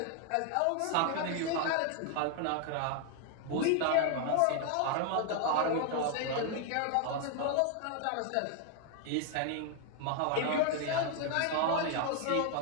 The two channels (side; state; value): both; different; correlation 0.00